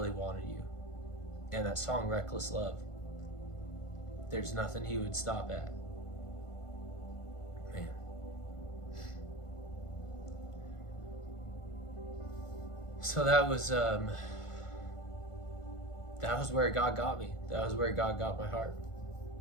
wanted you. And that song Reckless Love, there's nothing he would stop at. Man. So that was where God got me. That was where God got my heart.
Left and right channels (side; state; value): right; late; 1.5 ms